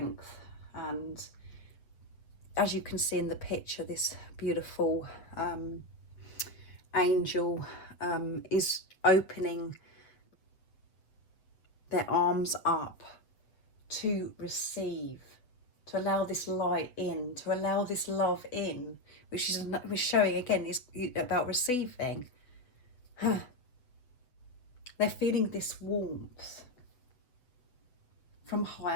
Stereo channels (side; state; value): right; late; 7.8 ms